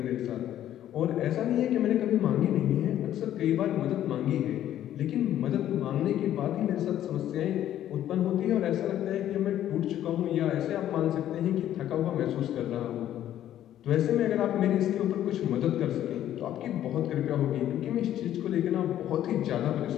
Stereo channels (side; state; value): right; quieter; 11.8 dB